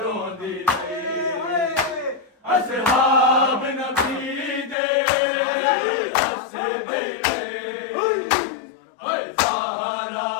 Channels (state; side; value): drops out; right; at 4.8 s